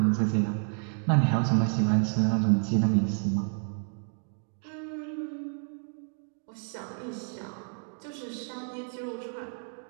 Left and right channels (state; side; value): silent; left; 56 dB below the other